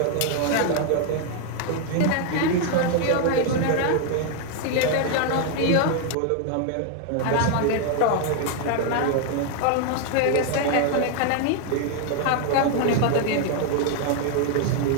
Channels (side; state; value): both; different; correlation 0.00